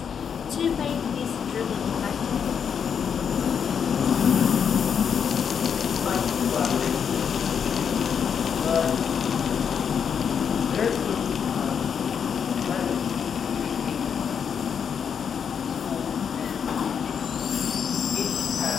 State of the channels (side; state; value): right; quieter; 7.3 dB